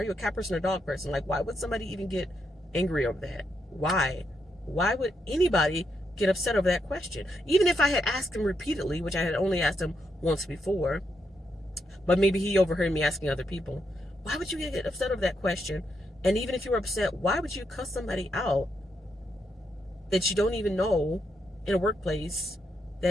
you a cat person or dog person? Like, why would somebody even get angry over that? Why would anybody get upset over that question? Even if I had asked him repeatedly, which I had only asked him once before, but maybe he overheard me asking other people, why would you get upset over that question? And even if you were upset, why would you cuss somebody out that you don't even know in a workplace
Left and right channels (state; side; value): normal; both; correlation 0.81